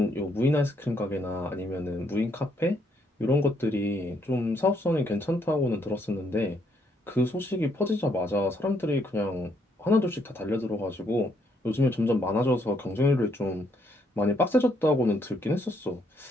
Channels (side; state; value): both; normal; correlation 0.72